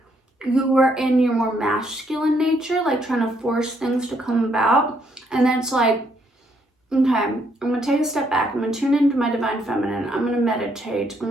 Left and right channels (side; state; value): both; normal; correlation 0.72